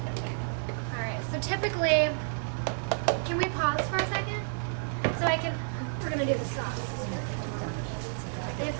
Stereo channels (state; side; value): silent; left; digital silence